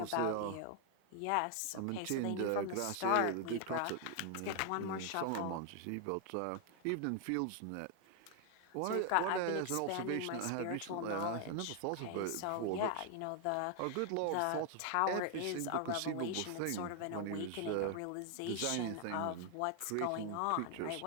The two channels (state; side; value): different; both; correlation 0.00